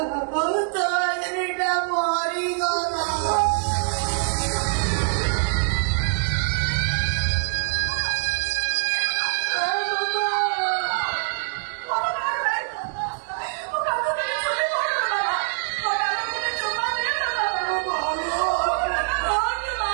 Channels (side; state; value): left; silent; digital silence